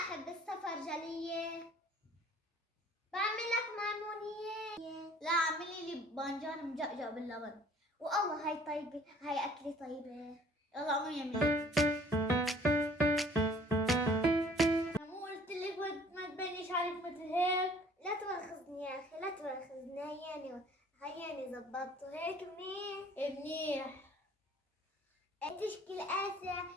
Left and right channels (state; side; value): normal; both; correlation 0.54